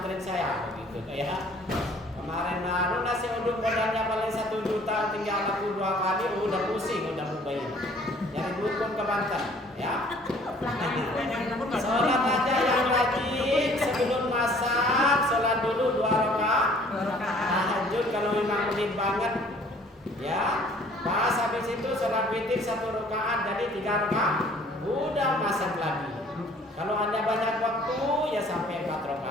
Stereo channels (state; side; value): normal; both; correlation 0.55